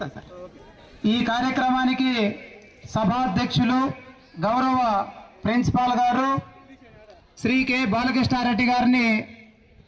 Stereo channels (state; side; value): identical; both; correlation 1.00